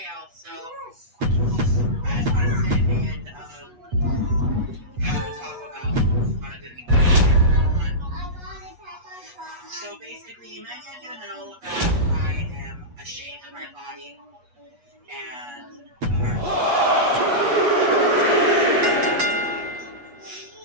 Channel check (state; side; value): late; left; 8.3 ms